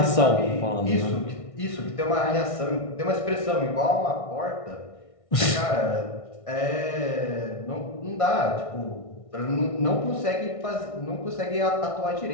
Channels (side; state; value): right; late; 1.6 ms